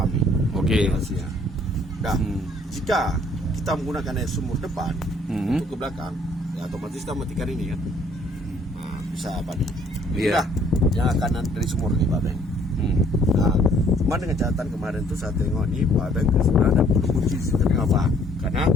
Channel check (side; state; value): both; normal; correlation 0.61